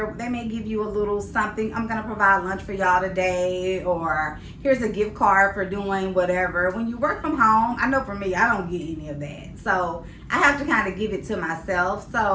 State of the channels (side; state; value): both; identical; correlation 1.00